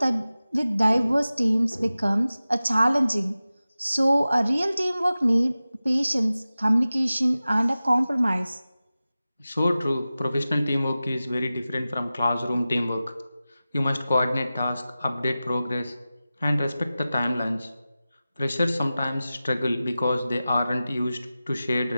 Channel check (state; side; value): inverted; both; correlation -0.95